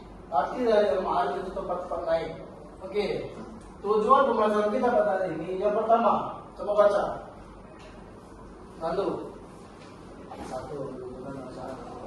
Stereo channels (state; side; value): identical; both; correlation 1.00